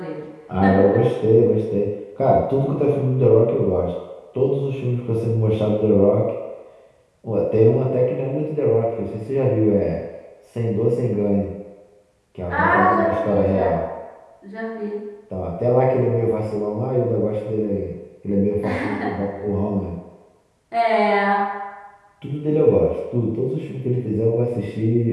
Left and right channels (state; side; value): identical; both; correlation 1.00